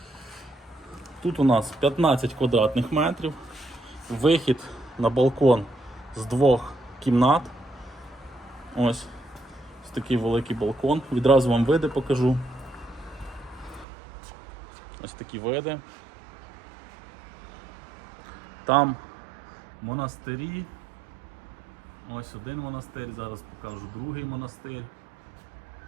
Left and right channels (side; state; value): left; drops out; at 13.9 s